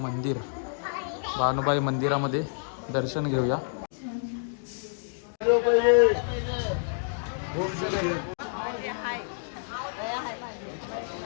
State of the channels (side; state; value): right; silent; digital silence